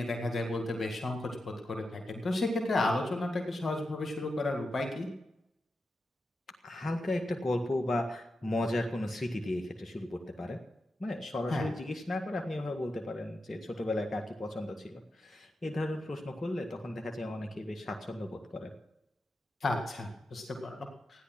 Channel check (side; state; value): both; normal; correlation 0.89